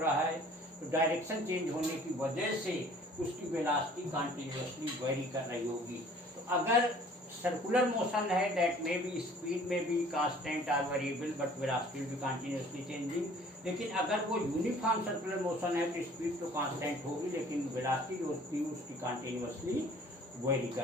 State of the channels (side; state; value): both; normal; correlation 0.52